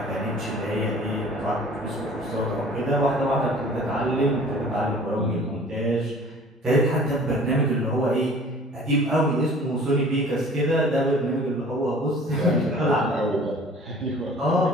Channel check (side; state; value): both; normal; correlation 0.48